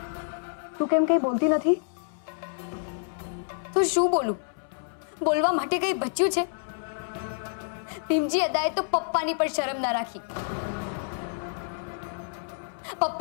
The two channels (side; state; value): right; silent; 59 dB below the other